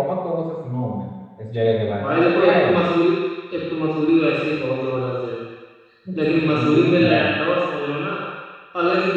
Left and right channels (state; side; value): identical; both; correlation 1.00